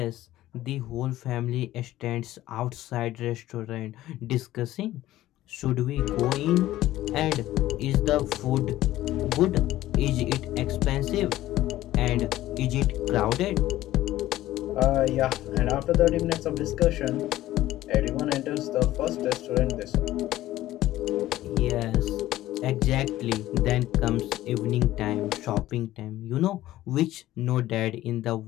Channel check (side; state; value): right; quieter; 15.0 dB